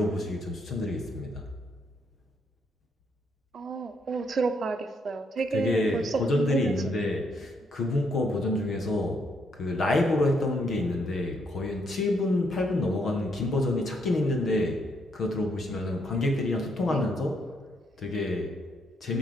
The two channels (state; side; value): normal; both; correlation 0.74